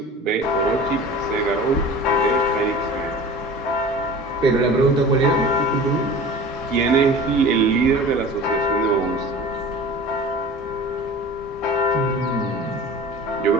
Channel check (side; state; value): both; normal; correlation 0.39